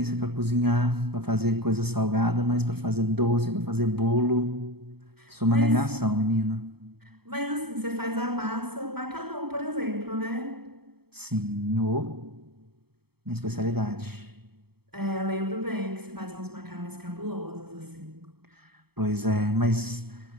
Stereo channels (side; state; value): left; late; 0.96 ms